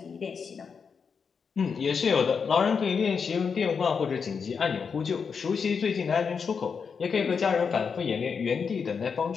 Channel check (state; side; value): quieter; right; 5.9 dB